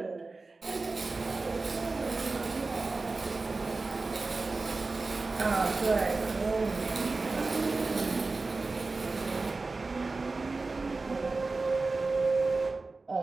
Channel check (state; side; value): quieter; left; 3.7 dB